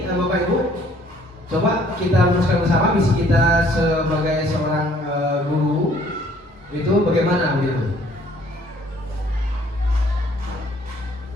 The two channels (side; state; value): both; normal; correlation 0.60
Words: Bapak Ibu, coba kita rumuskan bersama visi kita sebagai seorang guru itu bagaimana begitu.